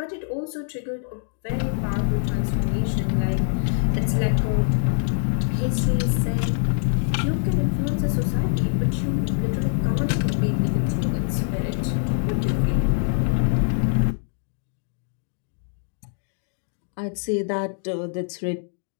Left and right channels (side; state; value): right; silent; digital silence